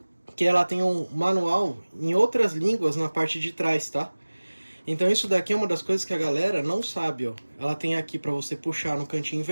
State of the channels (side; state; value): both; inverted; correlation -1.00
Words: que ela tem um manual em outras línguas na parte de trás, tá? Então isso daqui é uma das coisas que a galera não sabe, ó. Ela tem aqui para você puxar no cantinho